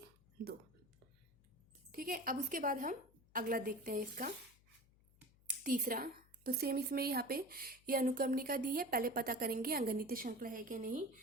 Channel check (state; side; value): noise; left; hum, 29 dB below the sound